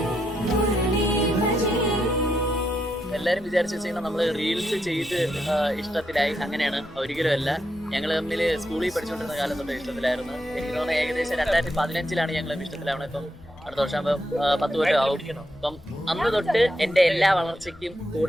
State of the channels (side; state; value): left; noise; rumble, 22 dB below the sound